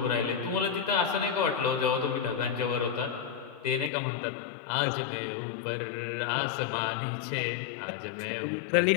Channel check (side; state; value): right; drops out; at 3.9 s